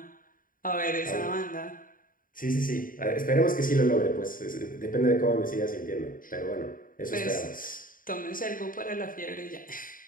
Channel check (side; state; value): right; late; 0.40 ms